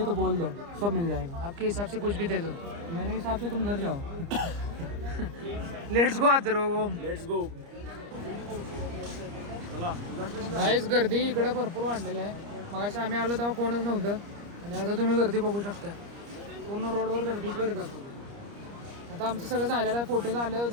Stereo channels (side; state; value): left; late; 30 ms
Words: तो बोल दो सब मिल जाएगा. आपके हिसाब से कुछ भी दे दो. मेरे हिसाब से तुम घर जाओ. लेट्स गो आज होम. Let's go. गाईस गर्दी इकडे भरपूर वाढलेली आहे. मगाशी आम्ही आलो तेव्हा कोणच नव्हतं आणि आता तुम्ही गर्दी बघू शकता. पूर्ण रोडवर गर्दीच बरं का. आता आमचं सगळं झालेलं आहे. फोटो झालं,